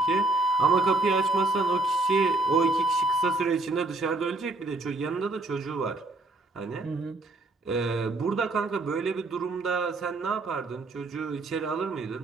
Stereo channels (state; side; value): quieter; left; 3.0 dB